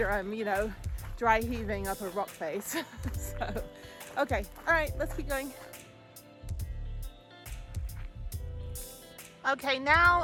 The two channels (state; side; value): identical; both; correlation 1.00